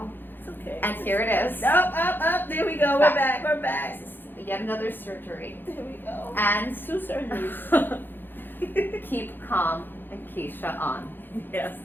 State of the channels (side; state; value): right; late; 0.096 ms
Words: It's okay. And here it is. Up. There we go. We're back. Yet another surgery. There we go. And 2 surgeries. keep calm and Kecia on. Yes.